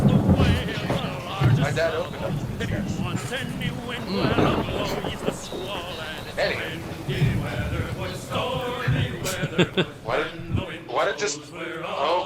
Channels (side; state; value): both; identical; correlation 1.00